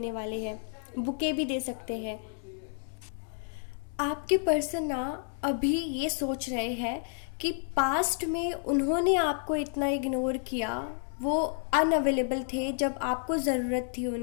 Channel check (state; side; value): silent; right; 58 dB below the other